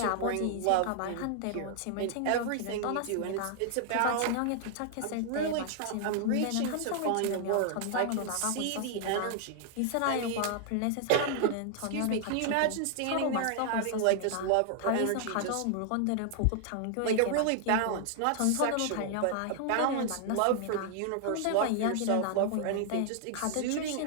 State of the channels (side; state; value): both; different; correlation 0.00